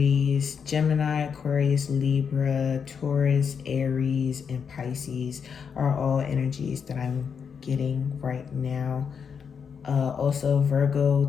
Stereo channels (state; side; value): quieter; right; 6.6 dB